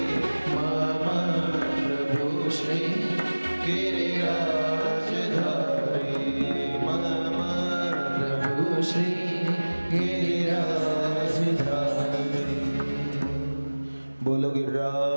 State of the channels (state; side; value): inverted; both; correlation -1.00